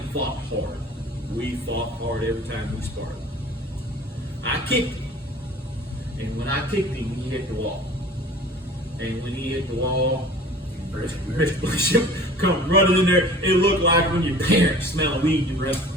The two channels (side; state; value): both; normal; correlation 0.44